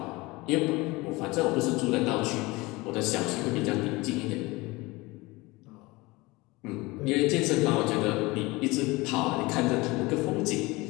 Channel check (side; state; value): right; quieter; 22.6 dB